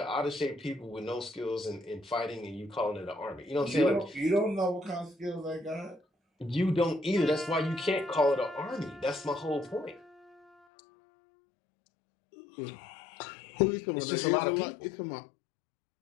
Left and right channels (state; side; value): drops out; right; at 10.5 s